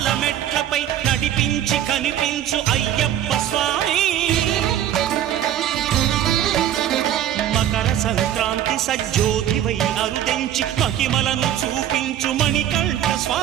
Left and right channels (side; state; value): left; quieter; 11.1 dB